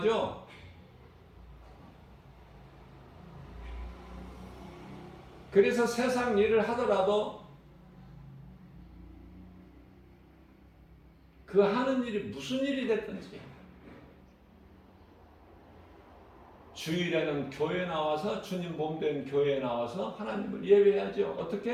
그래서 세상 일을 하더라도 그 하는 일이 무슨 일이 됐든지 주일에는 교회 나와서 주님 몸된 교회에 나와서 하나님을 예배해야죠.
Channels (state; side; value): identical; both; correlation 1.00